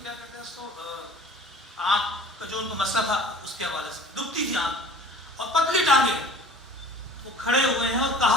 کیا کہتے ہیں اس کو, آنکھ کا جو ان کو مسئلہ تھا اس کے حوالے سے دکھتی تھی آنکھ, اور پتلی ٹانگیں. وہ کھڑے ہوئے ہیں اور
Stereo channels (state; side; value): normal; both; correlation 0.47